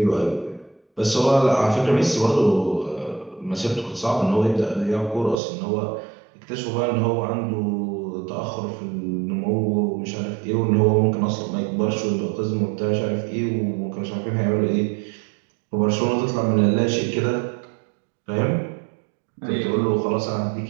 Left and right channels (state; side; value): drops out; left; at 5.4 s